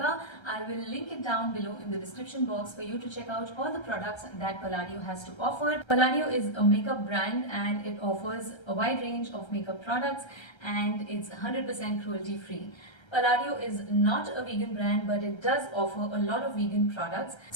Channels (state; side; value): late; right; 1.3 ms